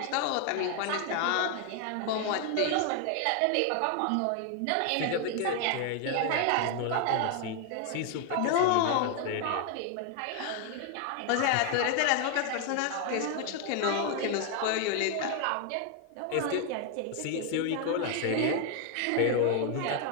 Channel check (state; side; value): different; both; correlation 0.00